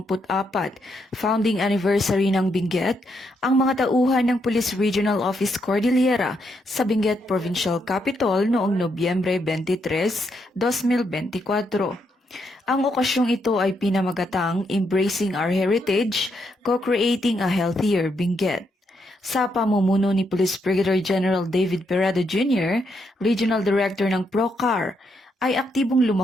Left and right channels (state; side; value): normal; both; correlation 0.78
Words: founding anniversary ng Benguet, ang mga tauhan ng Police Regional Office Cordillera sa Benguet Provincial Capital noong Nobyembre 23, 2024. Ang okasyong ito ay pinamagatang Embracing Our Heritage, Co-Creating a Healthier Benguet. Sa pamumuno ni Police Brigadier General David Peredo Jr., Regional Director ng PROCAR, ay aktibong